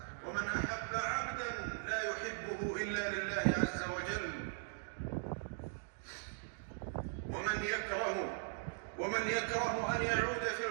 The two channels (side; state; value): left; silent; digital silence